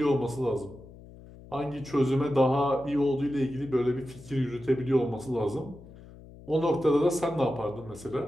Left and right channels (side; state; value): left; noise; hum, 19 dB below the sound